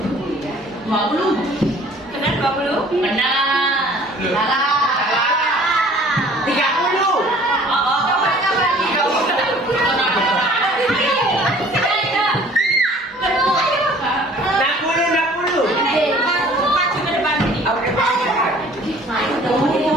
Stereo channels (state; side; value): normal; both; correlation 0.52